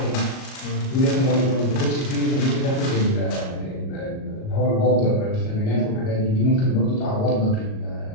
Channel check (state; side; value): late; right; 37 ms